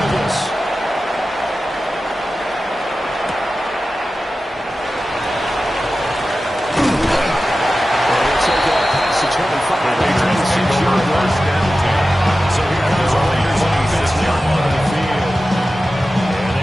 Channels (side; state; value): both; normal; correlation 0.94